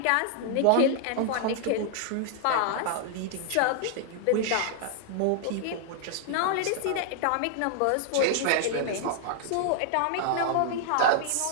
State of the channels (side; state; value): both; different; correlation -0.01